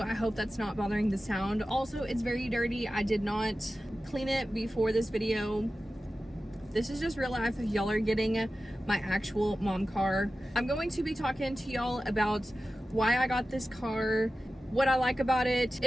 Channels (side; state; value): both; normal; correlation 0.94